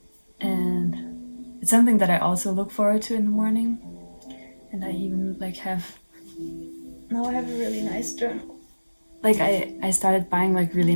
and it's something that I also look forward to in the morning. And I even now I have a really nice journal. Like, I started buying like really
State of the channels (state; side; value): inverted; both; correlation -1.00